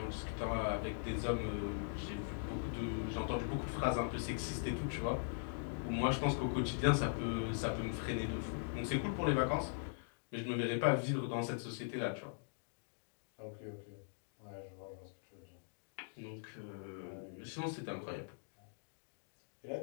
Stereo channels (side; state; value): right; silent; digital silence